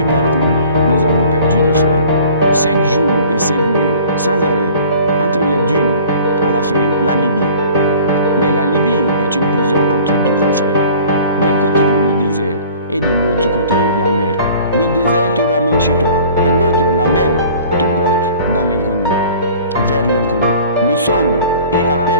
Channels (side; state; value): both; inverted; correlation -0.48